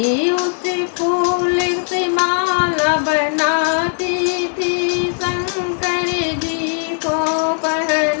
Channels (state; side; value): silent; right; 57 dB below the other